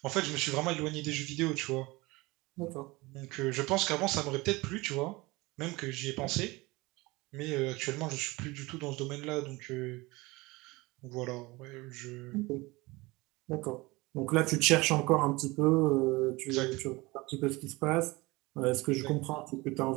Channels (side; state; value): left; quieter; 22.6 dB